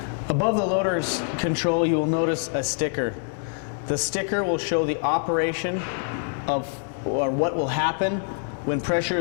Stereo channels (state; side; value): silent; right; 56 dB below the other